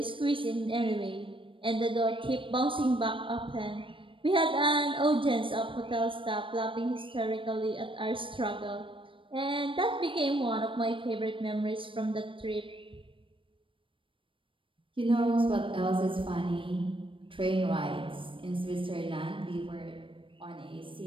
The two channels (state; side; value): late; left; 0.25 ms